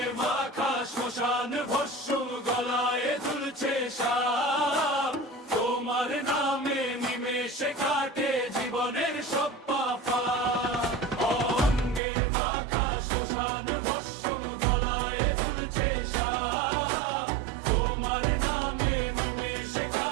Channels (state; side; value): drops out; left; at 12.0 s